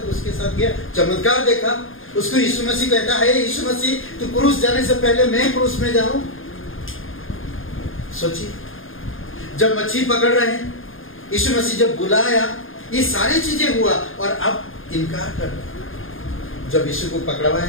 उसके साथ गया, चमत्कार देखा। उसको यीशु मसीह कहता है, यीशु मसीह तू क्रूस जाने से पहले मैं क्रूस में जाऊं। सोचिए, जब मच्छी पकड़ रहे हैं, यीशु मसीह जब बुलाया, ये सारी चीजें हुआ, और अब इनकार कर रहा। जब यीशु को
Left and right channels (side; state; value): right; late; 0.59 ms